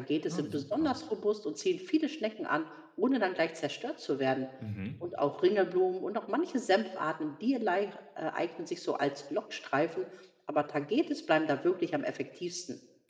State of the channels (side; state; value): both; identical; correlation 1.00